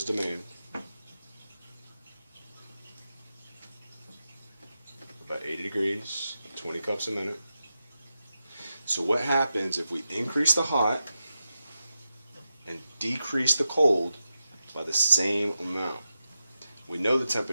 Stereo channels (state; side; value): inverted; both; correlation -0.89